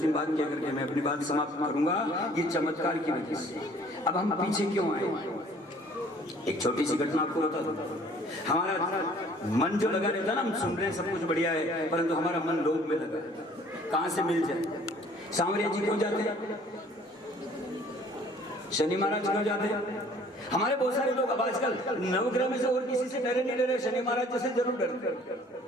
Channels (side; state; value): both; normal; correlation 0.55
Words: बात क्या करके मैं अपनी बात समाप्त करूंगा। ये चमत्कार की वजह से अब हम पीछे क्यों आए? एक छोटी सी घटना आपको बता दूं। हमारा मन जो लगा रहता है ना, हम सुन रहे हैं सब कुछ बढ़िया है, परंतु हमारा मन लोभ में लगा। कहां से मिल जाए? सांवरिया जी क्यों जाते हैं? शनि महाराज क्यों जाते हैं? हमारे बहुत सारे लोग अब आजकल नवग्रह में से और किसी से डरे नहीं डरे, शनि महाराज जैसे जरूर